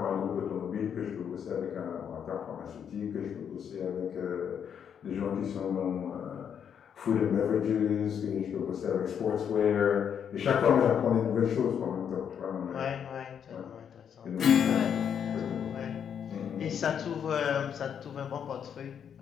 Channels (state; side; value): quieter; right; 8.1 dB